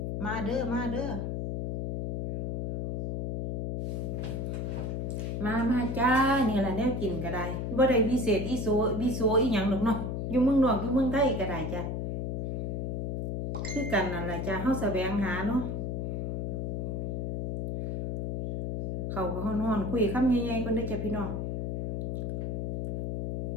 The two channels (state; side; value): noise; left; hum, 2 dB below the sound